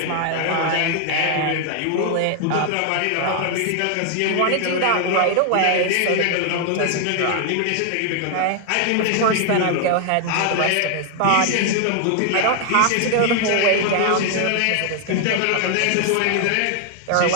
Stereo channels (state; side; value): different; both; correlation 0.00